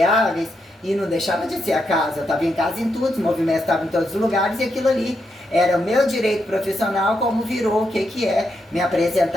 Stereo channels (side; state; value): both; normal; correlation 0.82